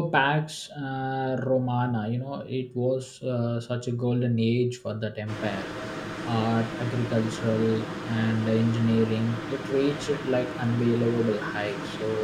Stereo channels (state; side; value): identical; both; correlation 1.00